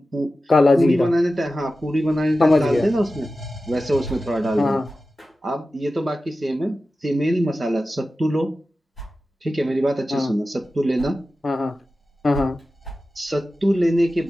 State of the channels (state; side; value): normal; both; correlation 0.94